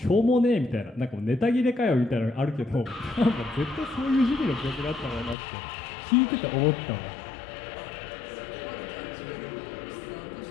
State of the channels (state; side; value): drops out; right; at 5.4 s